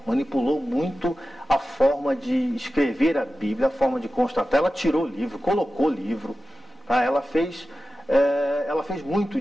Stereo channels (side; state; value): both; normal; correlation 0.94